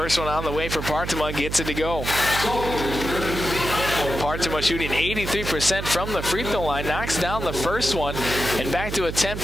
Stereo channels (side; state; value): right; noise; hum, 6 dB below the sound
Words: one on the way for Partema, gets it to go. Partema shooting 83% from the free throw line, knocks down the first one, and back to a